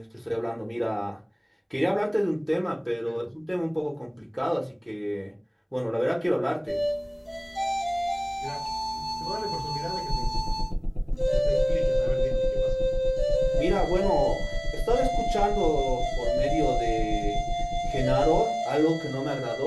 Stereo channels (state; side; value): identical; both; correlation 1.00